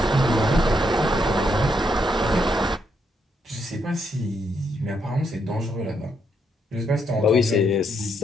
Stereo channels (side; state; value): both; normal; correlation 0.77